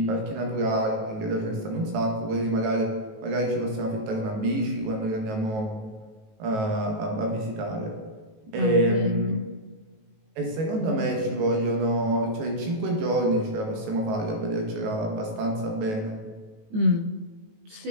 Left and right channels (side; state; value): left; late; 18 ms